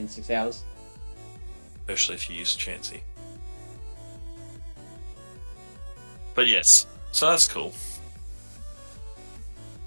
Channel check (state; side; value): inverted; both; correlation -1.00